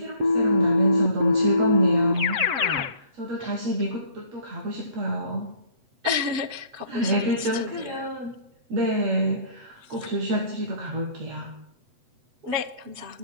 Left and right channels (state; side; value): late; left; 7.9 ms